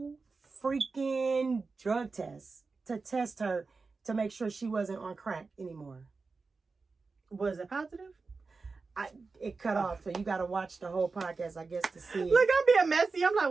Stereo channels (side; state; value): left; quieter; 4.2 dB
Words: freaking drug test to test her to make sure she wasn't on crack anymore. Was it positive? It cut off, so you got to watch the whole podcast, I guess, to see it. Look, I'm being messy. I'm like,